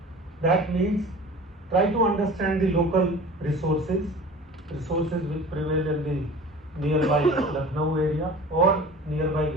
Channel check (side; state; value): both; normal; correlation 0.40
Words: That means try to understand the local resources which prevail in the nearby Lucknow area or nearby